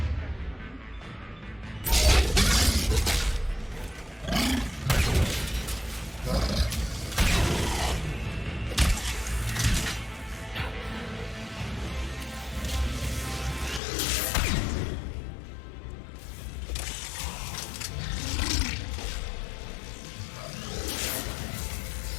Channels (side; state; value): right; drops out; at 13.8 s